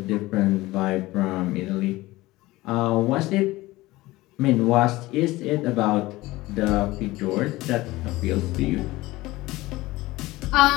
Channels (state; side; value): quieter; right; 19.0 dB